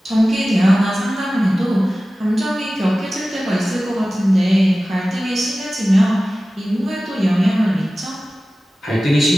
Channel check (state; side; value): normal; both; correlation 0.96